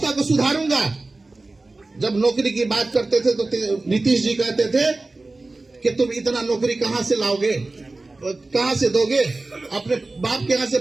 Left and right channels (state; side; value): quieter; left; 3.2 dB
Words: को सुधारूंगा, जब नौकरी की बात करते थे तो नीतीश जी कहते थे कि तुम इतना नौकरी कहां से लाओगे, कहां से दोगे, अपने बाप के यहाँ से